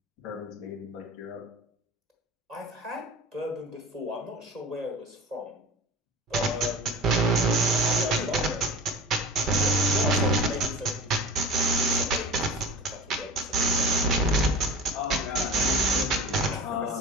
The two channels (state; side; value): normal; both; correlation 0.34